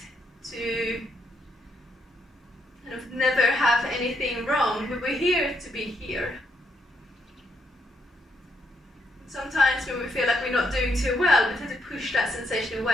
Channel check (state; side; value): normal; both; correlation 0.77